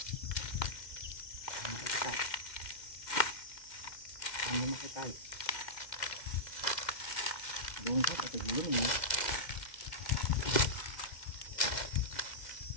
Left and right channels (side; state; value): right; late; 2.1 ms